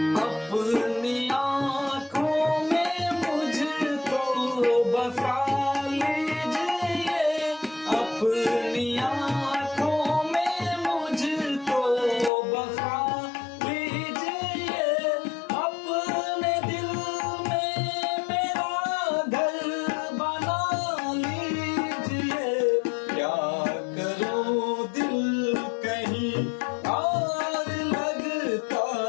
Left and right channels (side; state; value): right; drops out; at 12.3 s